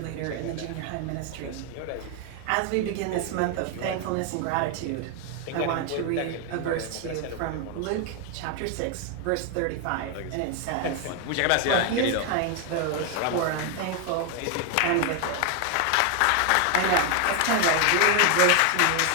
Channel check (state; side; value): different; both; correlation 0.01